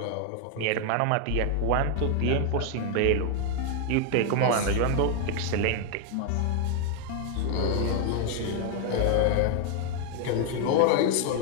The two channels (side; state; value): both; different; correlation 0.00